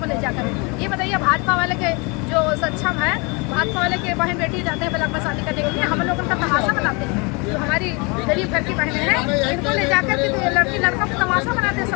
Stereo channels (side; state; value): right; quieter; 29.9 dB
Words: में ले जाकर। ये बताइए भाजपा वाले के जो सक्षम है, भाजपा वाले के बहन बेटी जाते हैं ब्लॉक में शादी करने के लिए, हम लोग उनका तमाशा बनाते हैं। जो हमारी गरीब घर की बहनें हैं, इनको ले जाकर के लड़की लड़का को तमाशा बनाते हैं।